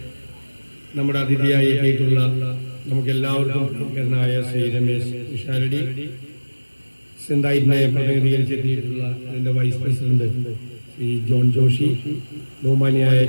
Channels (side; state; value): both; inverted; correlation -1.00